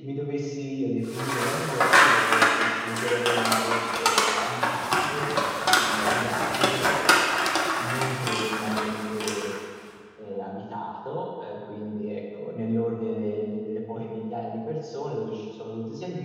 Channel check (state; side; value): identical; both; correlation 1.00